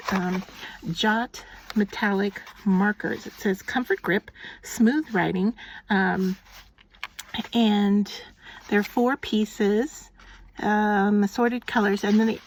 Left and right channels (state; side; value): identical; both; correlation 1.00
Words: Jot metallic markers. It says Comfort Grip, Smooth Writing, and they're 4 pieces, assorted colors. And then